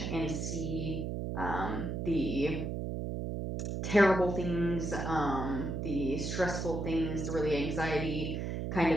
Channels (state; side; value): noise; right; hum, 3 dB below the sound